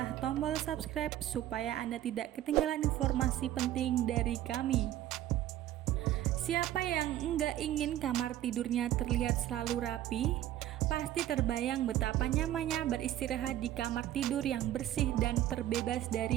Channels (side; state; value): left; quieter; 13.0 dB